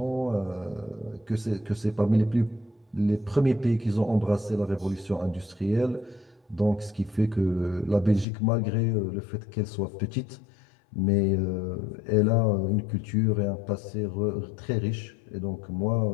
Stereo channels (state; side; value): drops out; right; at 8.2 s